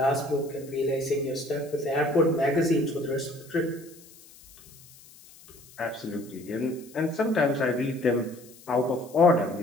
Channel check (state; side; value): noise; left; hiss, 23 dB below the sound